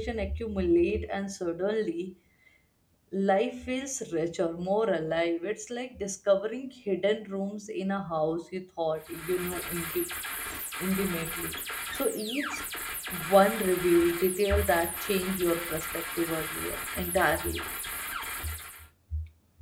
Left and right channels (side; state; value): both; identical; correlation 1.00